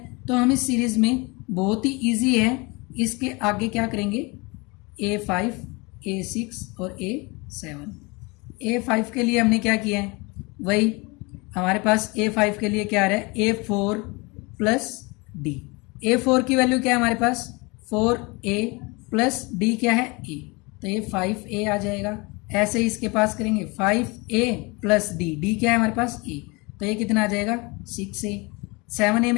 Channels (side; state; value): right; quieter; 26.9 dB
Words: तो हम इस सीरीज में बहुत ही इजी है, इसके आगे क्या करेंगे A5 A6 और A7। A5 के लिए हमने क्या किया है, वही हमारे पास A5 के लिए क्या आ रहा है A4 प्लस D। A4 की वैल्यू क्या है हमारे पास 4A प्लस D क्या है A, तो ये 5A आ जाएगा। ऐसे ही इसके पास करेंगे 5A प्लस D क्या है हमारे पास A, तो ये कितना आ जाएगा 6A। 7A